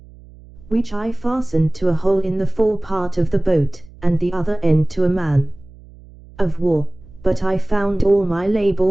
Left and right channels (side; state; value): right; noise; hum, 22 dB below the sound